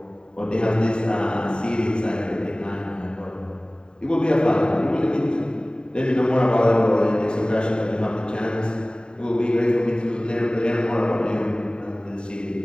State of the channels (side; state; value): right; late; 0.048 ms